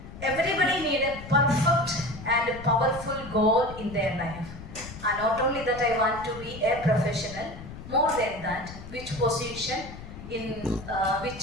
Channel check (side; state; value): left; noise; rumble, 13 dB below the sound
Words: everybody need a perfect and powerful goal in their life. And not only that I want to be a professional, more than that, which position, in